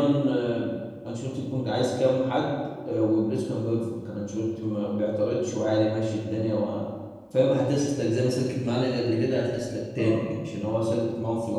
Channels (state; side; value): identical; both; correlation 1.00